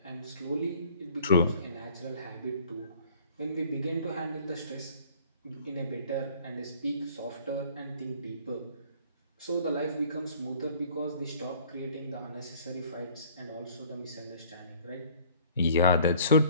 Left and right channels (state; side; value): inverted; both; correlation -0.54